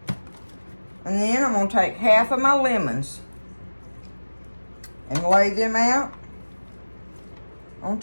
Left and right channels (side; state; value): both; inverted; correlation -1.00